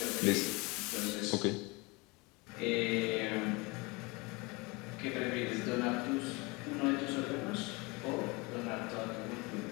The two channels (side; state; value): right; quieter; 26.3 dB